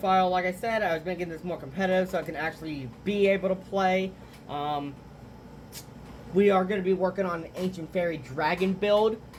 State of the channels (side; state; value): both; identical; correlation 1.00